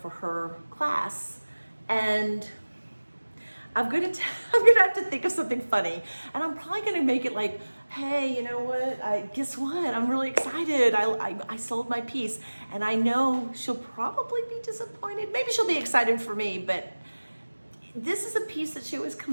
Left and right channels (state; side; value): inverted; both; correlation -1.00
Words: her class, and I'm gonna have to think of something funny, and I'm probably gonna make it like, hey, you know what? Guess what? I'm really excited. I sold my piece, and I know she'll probably be disappointed. Maybe she'll be excited for me, but this is a piece that she always